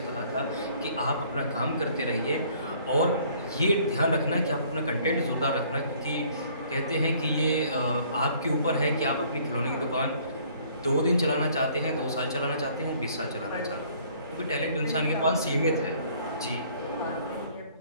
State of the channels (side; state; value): both; inverted; correlation -0.58